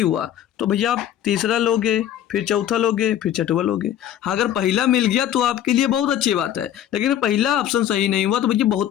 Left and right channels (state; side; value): quieter; right; 11.1 dB